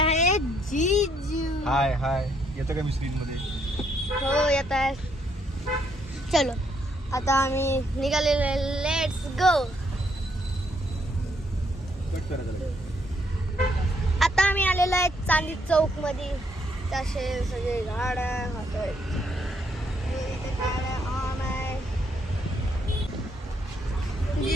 जीजू. हाय हाय. येतं का मी स्क्रीन मध्ये? हो येत आहे. चलो आता आम्ही निघालेलो आहे. Let's go. आता आम्ही आलेलो आहे चांदी चौक मध्ये. तसे सगळे गाड्या होतोय. इथे गाड्या ऑन आहे.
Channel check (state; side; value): normal; both; correlation 0.72